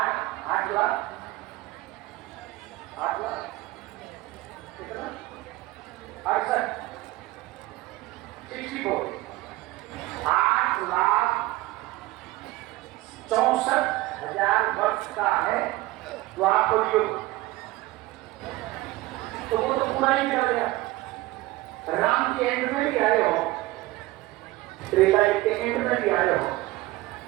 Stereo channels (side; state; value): left; quieter; 18.6 dB